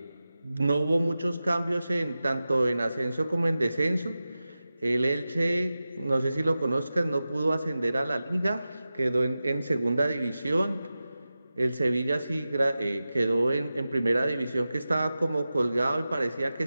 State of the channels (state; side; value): inverted; both; correlation -0.94